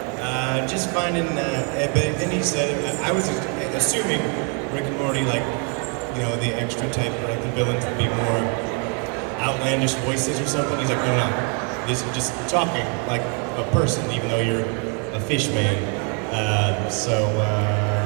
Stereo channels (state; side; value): quieter; left; 37.8 dB